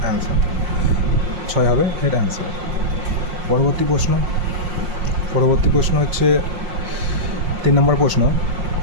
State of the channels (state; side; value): late; left; 5.6 ms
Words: অ্যান্সার। 6 হবে এর অ্যান্সার। পরবর্তী প্রশ্ন হচ্ছে 3 নম্বর প্রশ্ন।